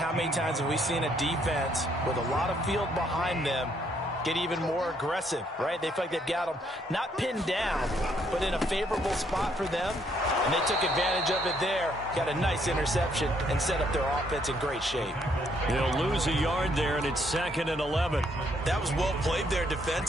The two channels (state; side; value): normal; both; correlation 0.70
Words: how many times have we seen a defense with a lot of field behind them get even more aggressive, right? They feel like they've got them not pinned down, but in a favorable spot for them, and they took advantage of it there, got a nice interception, and set up their offense in great shape. They'll lose a yard there, and it's 2nd and 11. That was well played there